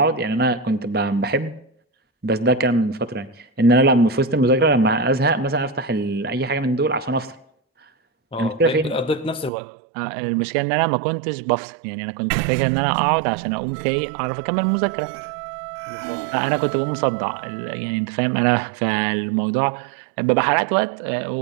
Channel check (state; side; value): drops out; left; at 9.5 s